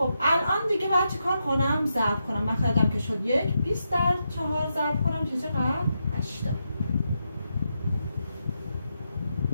الان دیگه باید چی کار کنم؟ ضرب کنم. مخرجم که شد 1. 20 در 4 ضرب کنم چه چقدر؟ 80.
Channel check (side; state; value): both; inverted; correlation -0.84